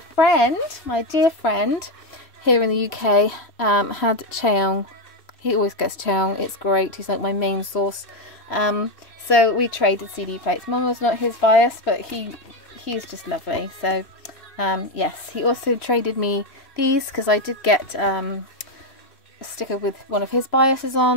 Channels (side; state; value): right; late; 3.0 ms